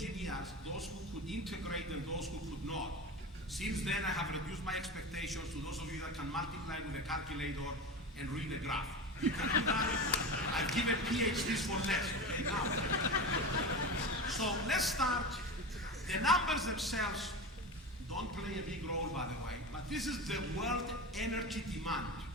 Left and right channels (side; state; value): both; normal; correlation 0.26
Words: those who could integrate and those who could not. Since then, I have reduced my expectations to those of you that can multiply with a calculator and read a graph. You can do that. I've given PhDs for less, okay, now. So let's start. The numbers themselves don't play a big role, by the way, but this is the world energy demand,